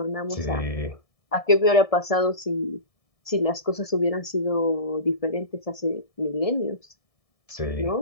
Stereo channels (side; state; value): right; late; 1.7 ms